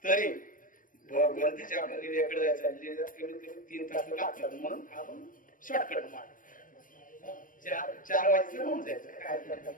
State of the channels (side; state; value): right; late; 0.39 ms